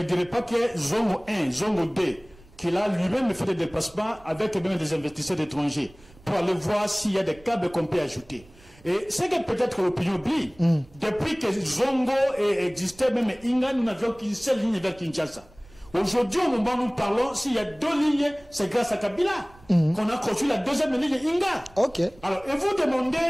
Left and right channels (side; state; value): right; noise; rumble, 25 dB below the sound